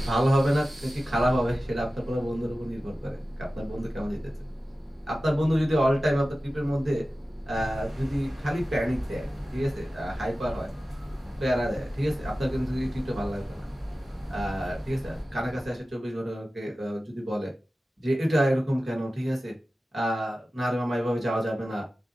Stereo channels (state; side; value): normal; both; correlation 0.95